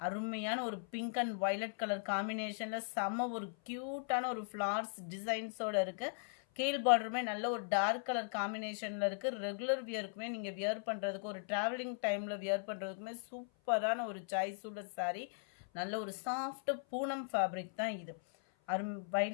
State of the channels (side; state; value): right; silent; 52 dB below the other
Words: அருமையான ஒரு பிங்க் அண்ட் வயலட் கலர் காம்பினேஷனில் செம்ம ஒரு க்யூட்டான ஒரு ஃப்ளார்ஸ் டிசைன்ஸோடு இருக்குது. கீழ் பார்டருமே நல்ல ஒரு டார்க் கலர் காம்பினேஷனில் இருக்குது. ரெகுலர் வியருக்குமே நீங்கள் வியர் பண்ணுறதுக்கு, ஒரு ட்ராவலிங் டைமில் வியர் பண்ணுறதுக்குமே சூப்பரான ஒரு சாய்ஸ் உள்ள சாரீ. நல்ல ஒரு சாஃப்ட் பூனம் ஃபேப்ரிக் தான் இது.